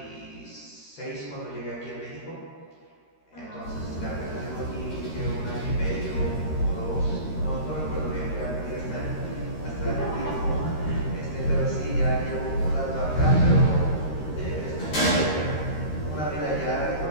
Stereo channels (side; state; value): right; late; 13 ms